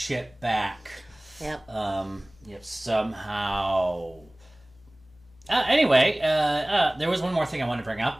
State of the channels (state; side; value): noise; left; hum, 26 dB below the sound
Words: back. Yep. Somehow. Anyway, there was one more thing I wanted to bring